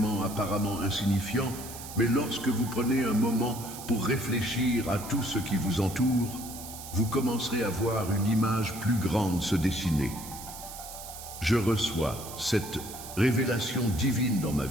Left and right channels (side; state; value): right; noise; hiss, 12 dB below the sound